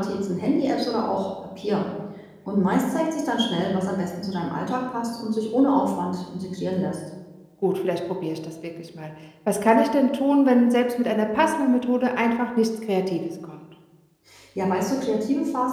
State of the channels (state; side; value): identical; both; correlation 1.00